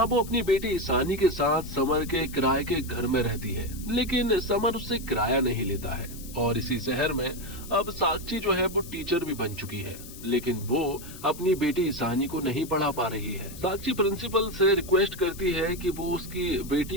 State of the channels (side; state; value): left; noise; hiss, 15 dB below the sound